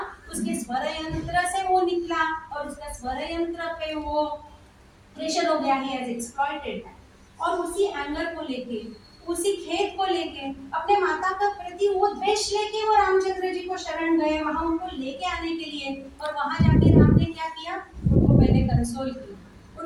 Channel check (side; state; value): both; identical; correlation 1.00